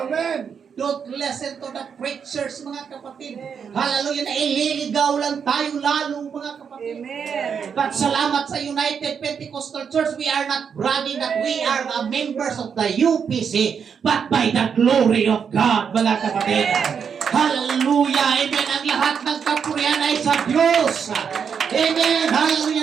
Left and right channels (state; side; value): quieter; left; 6.9 dB